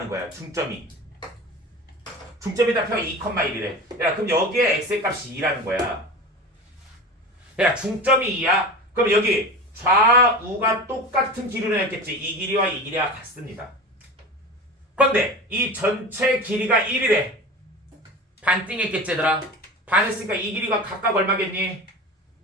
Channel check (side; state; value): both; normal; correlation 0.32